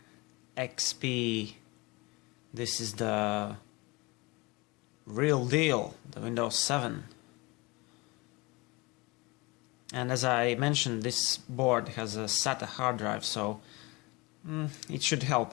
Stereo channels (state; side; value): quieter; right; 25.0 dB